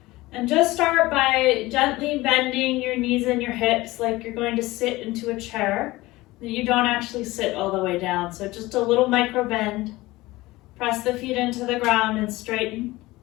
And just start by gently bending your knees and your hips like you're going to sit into a chair. You don't actually sit all the way down, so just a little micro bend. Press the feet into the ground and straighten,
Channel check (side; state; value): right; quieter; 19.4 dB